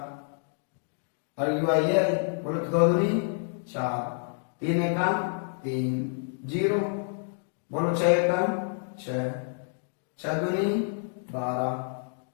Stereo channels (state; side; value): silent; right; 59 dB below the other